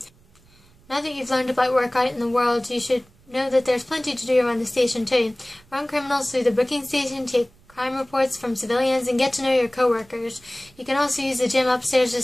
Now that you've learned about work out in the world, you should know that there's plenty to do around the station too. Run criminals through the booking station, take crime reports from civilians, and get to know your co-workers. You can also use the gym upstairs to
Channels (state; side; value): noise; right; rumble, 30 dB below the sound